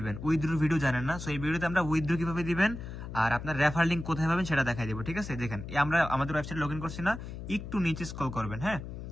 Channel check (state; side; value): noise; left; hum, 9 dB below the sound